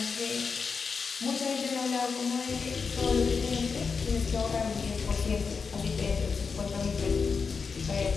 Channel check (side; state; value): right; quieter; 5.3 dB